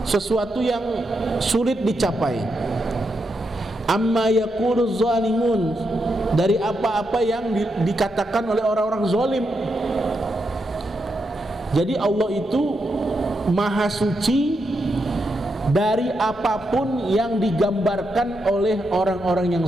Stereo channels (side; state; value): both; normal; correlation 0.83